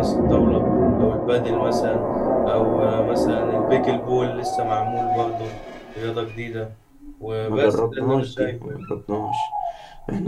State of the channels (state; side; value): identical; both; correlation 1.00